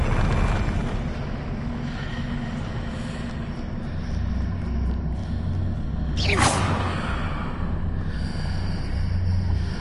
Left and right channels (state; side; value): identical; both; correlation 1.00